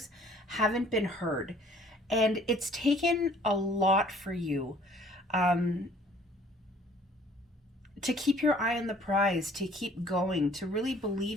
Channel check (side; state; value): both; normal; correlation 0.56